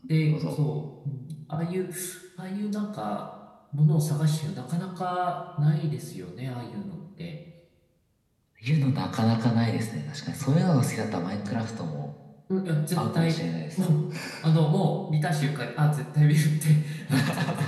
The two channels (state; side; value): identical; both; correlation 1.00